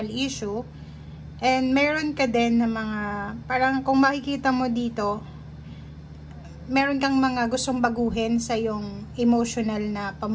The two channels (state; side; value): identical; both; correlation 1.00